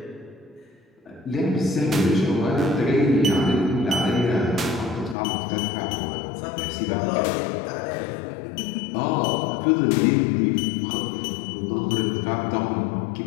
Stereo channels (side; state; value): right; drops out; at 5.2 s